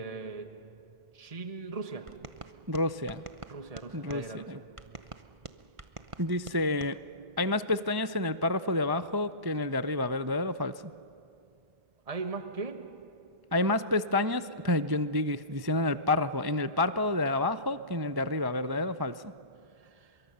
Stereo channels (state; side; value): late; left; 1.1 ms